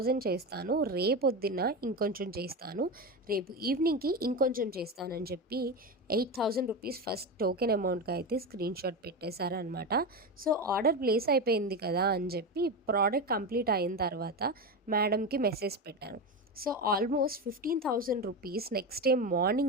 చేస్తాను. రేపొద్దున్న ఇంకొంచెం చేస్తాను. రేపు ఈవినింగ్‌కి ఇంకొంచెం చేస్తాను" అని చెప్పి 8,000 రూపీస్ ఫస్ట్ టోకెన్ అమౌంట్‌గా అయితే స్క్రీన్‌షాట్ పెట్టేశారనమాట. సో, ఆర్డర్ ప్లేస్ అయిపోయింది కదా అని చెప్పి ప్రోడక్ట్ కంప్లీట్ అయిన తర్వాత మేడంకి మెసేజ్ పెట్టాను. So, almost 15,000 rupees next day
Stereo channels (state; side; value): normal; both; correlation 0.18